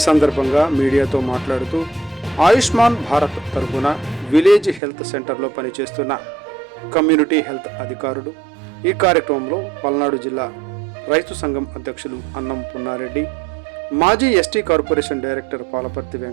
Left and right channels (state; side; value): drops out; left; at 4.8 s